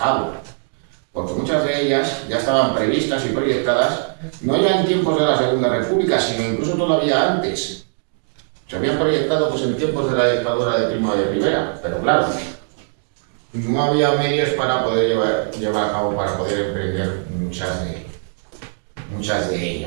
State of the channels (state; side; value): silent; left; 66 dB below the other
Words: Porque muchas de ellas ya estaban previstas y proyectadas, no ya en tiempos de la Segunda República, sino incluso todavía antes. Se habían proyectado pues en tiempos de la dictadura de Primo de Rivera, pero claro, no había medios para poder llevar a cabo, para poder emprender muchas de